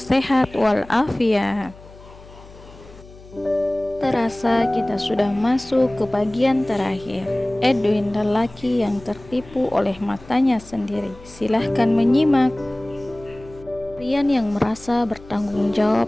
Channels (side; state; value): left; noise; hum, 21 dB below the sound